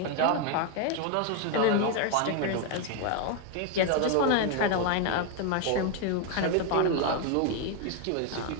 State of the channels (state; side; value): different; both; correlation 0.01